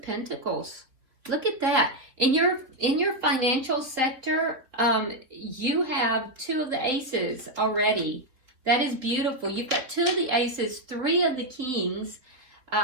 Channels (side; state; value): left; late; 3.6 ms